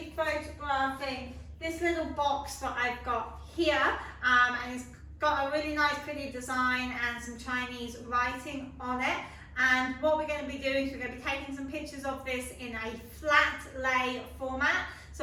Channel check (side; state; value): both; identical; correlation 1.00